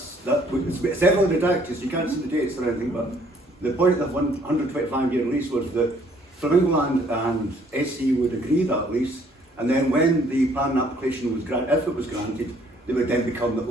heavily redacted, so you can't see the dates or anything, but the point of the 125-year lease was that Flamingo Land and SE would agree that lease, and then when the planning application was granted, if it was granted, they would then become the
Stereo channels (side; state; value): both; normal; correlation 0.62